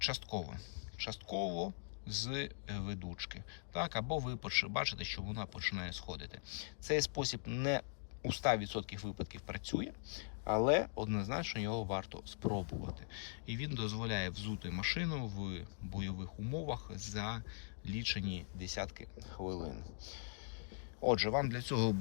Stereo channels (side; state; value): right; silent; digital silence